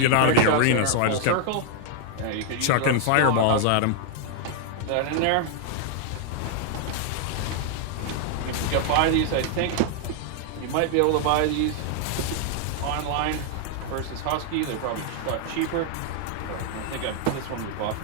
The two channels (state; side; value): different; both; correlation 0.00